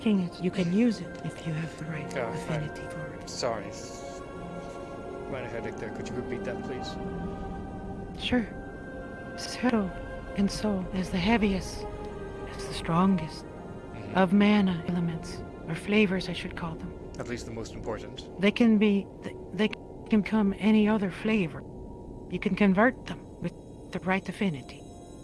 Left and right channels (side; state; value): both; identical; correlation 1.00